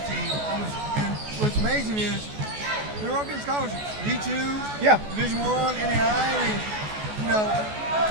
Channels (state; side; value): late; left; 14 ms